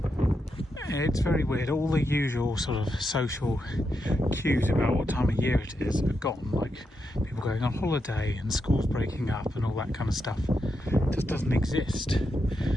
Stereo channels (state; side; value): normal; both; correlation 0.84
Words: It's very weird. All the usual sort of social cues about what time of year it is are gone. Like people going on holiday and schools breaking up and all that kind of stuff. It just doesn't exist.